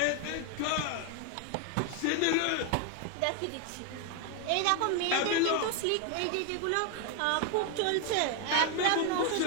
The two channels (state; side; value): different; both; correlation 0.01